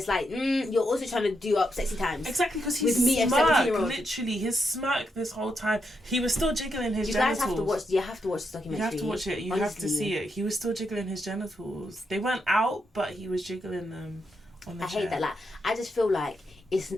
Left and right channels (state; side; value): normal; both; correlation 0.82